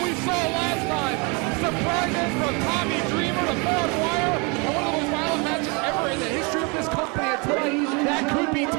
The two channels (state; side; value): quieter; left; 30.9 dB